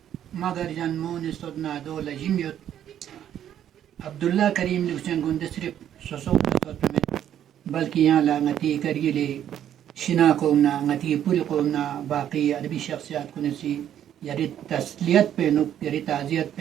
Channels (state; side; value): quieter; left; 10.4 dB